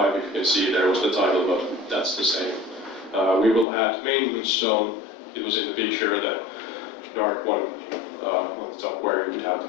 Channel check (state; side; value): drops out; right; at 3.7 s